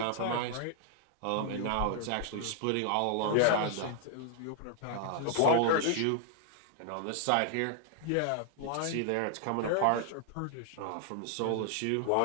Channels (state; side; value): different; both; correlation 0.00